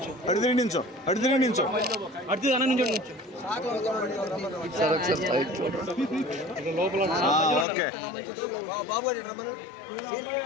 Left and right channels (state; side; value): drops out; right; at 7.7 s